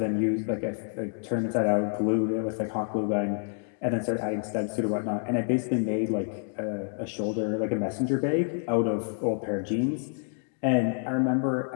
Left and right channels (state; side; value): silent; right; 58 dB below the other